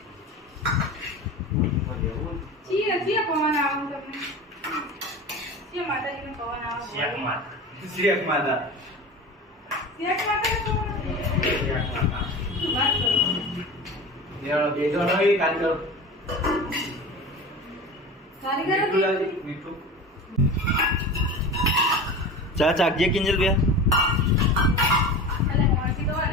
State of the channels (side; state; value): both; normal; correlation 0.32